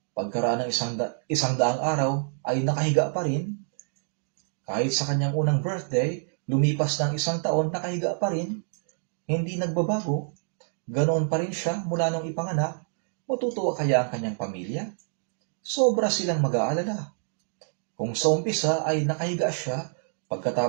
pagkaraan ng isang daang araw ay nakahiga pa rin. Kahit sa kanyang unang birthday, lumipas ng 1 taon, nakahiga pa rin. Hindi nagbabago. Ganoon pa rin siya mula nung ipanganak. Matutuwa kaya ang kanyang pamilya? Sobra silang mag-aalala. Kung sa umpisa ay nakahiga siya,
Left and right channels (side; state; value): left; silent; digital silence